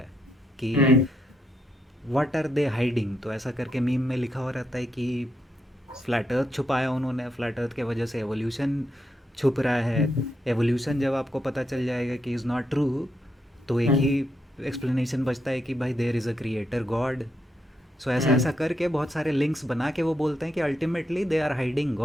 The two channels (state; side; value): normal; both; correlation 0.80